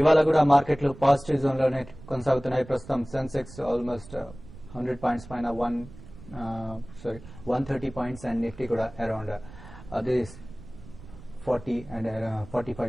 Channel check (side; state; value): right; noise; rumble, 18 dB below the sound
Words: కూడా మార్కెట్లు పాజిటివ్ జోన్ లోనే కొనసాగుతున్నాయి. ప్రస్తుతం సెన్సెక్స్ ఆల్మోస్ట్ 100 పాయింట్స్ పైన 130 పాయింట్స్ అండ్ నిఫ్టీ కూడా అరౌండ్ అదే 40 అండ్